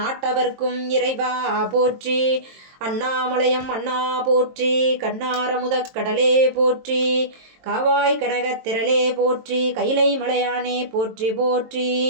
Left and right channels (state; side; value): late; left; 23 ms